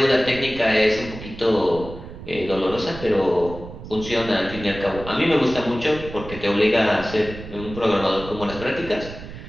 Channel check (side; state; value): right; noise; rumble, 13 dB below the sound